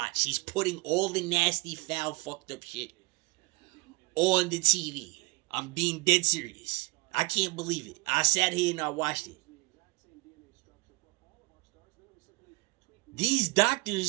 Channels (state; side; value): quieter; left; 26.4 dB